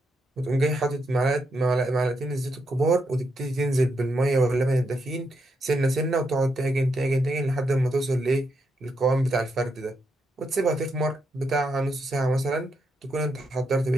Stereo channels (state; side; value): normal; both; correlation 0.81